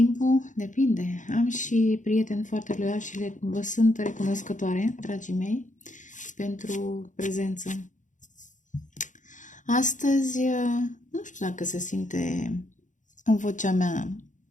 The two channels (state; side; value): late; right; 0.36 ms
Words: depinde. Am și prieteni foarte loiali și vă sunt recunoscătoare, dragii mei, pentru prezență. Astăzi, nu știu dacă se simte în vocea mea